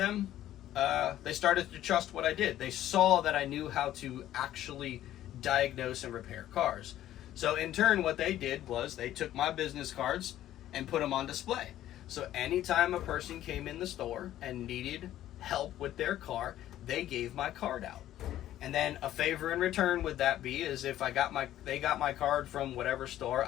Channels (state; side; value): quieter; right; 12.9 dB